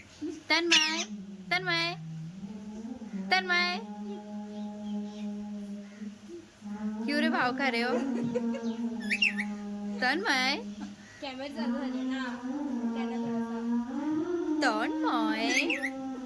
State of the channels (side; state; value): both; identical; correlation 1.00